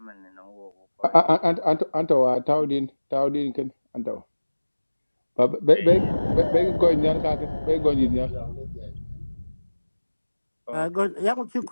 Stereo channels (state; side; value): inverted; both; correlation -1.00